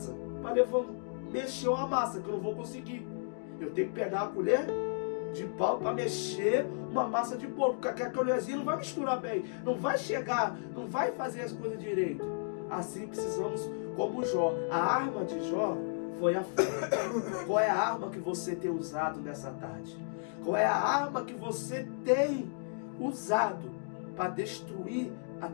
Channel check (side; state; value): right; silent; digital silence